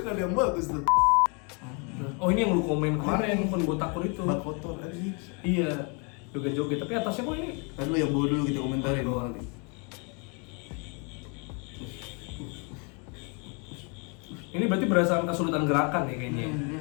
Ada yang bagus tuh. Oh ini yang lu komen kemarin, kon botakur itu. Bak kotor aja. Iya, joget-joget. Tapi atasnya kok ini? Kan lu yang bawa dulu kita komentarin. Oh, Ini berarti berdasarkan kesulitan gerakan ya kayaknya.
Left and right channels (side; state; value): right; quieter; 34.7 dB